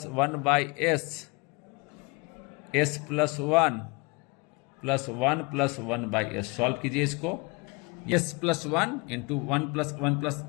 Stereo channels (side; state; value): right; quieter; 27.9 dB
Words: 1/S, S+1 + 1 + 1/S। Solve कीजिए इसको, S+1 इंटू 1 +